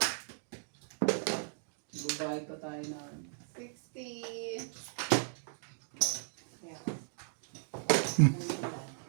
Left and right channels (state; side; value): silent; left; digital silence